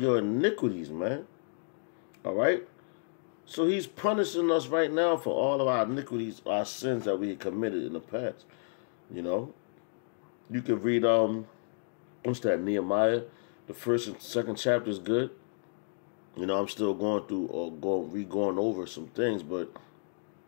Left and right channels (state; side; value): silent; right; 57 dB below the other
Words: iniquities, man. All right? So he's punishing us right now for all of our iniquities, our sins that we had committed in the past. You know? You can read, what's that, Nehemiah? The first and second chapter is good. You know, I'm still going through or going over some things, but